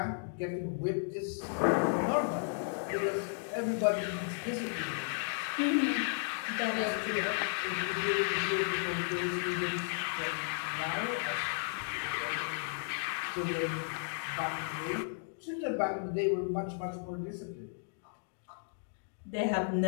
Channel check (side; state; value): right; silent; digital silence